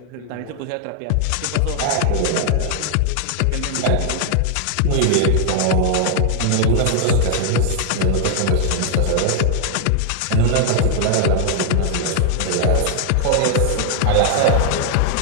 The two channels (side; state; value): both; different; correlation 0.00